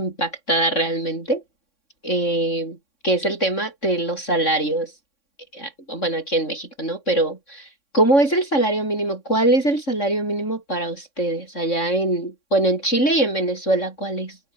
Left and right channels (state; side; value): late; right; 3.6 ms